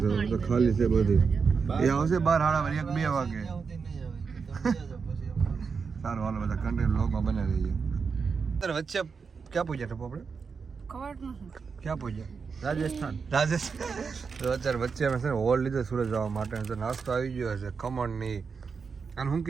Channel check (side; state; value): left; quieter; 5.4 dB